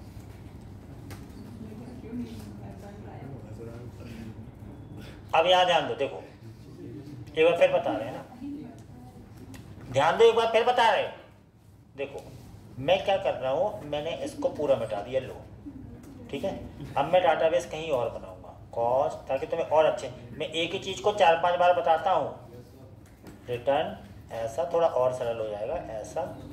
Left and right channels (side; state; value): both; identical; correlation 1.00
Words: अब यहाँ ध्यान दो, देखो एक बार फिर बता रहे हैं ना, ध्यान दो, एक बार फिर बता रहे। देखो मैं क्या कर रहा हूँ, मैंने इसको पूरा मिटा दिया, लो ठीक है। अब मैं डाटाबेस कहीं और बनाऊंगा कॉस्ट, ताकि तुम्हें और अच्छे, मैं एक ही चीज को 4-5 बार बताता हूँ। रिटर्न ऐसा थोड़ा और सरल हो जाएगा, ऐसा,